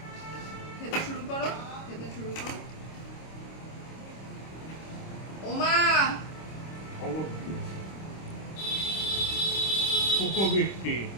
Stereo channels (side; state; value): right; late; 26 ms